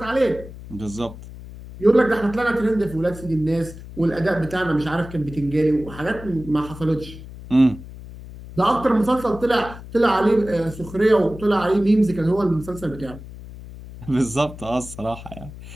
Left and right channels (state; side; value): noise; left; hum, 15 dB below the sound